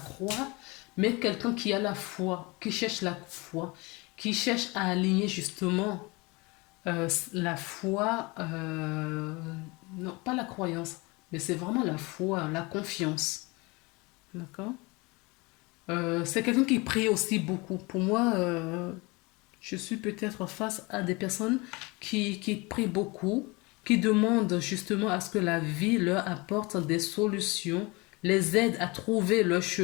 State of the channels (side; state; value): right; quieter; 25.6 dB